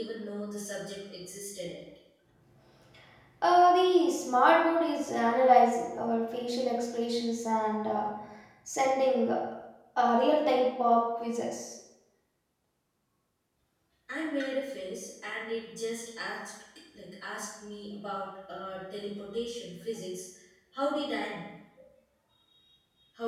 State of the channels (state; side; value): identical; both; correlation 1.00